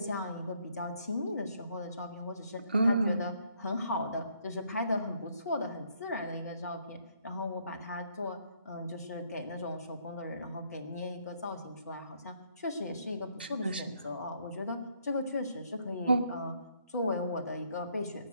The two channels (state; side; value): inverted; both; correlation -0.69